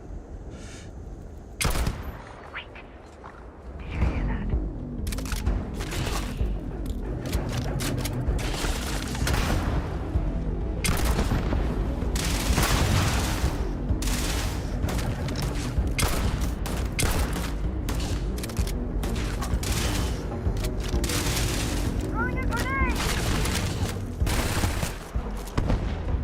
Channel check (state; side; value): identical; both; correlation 1.00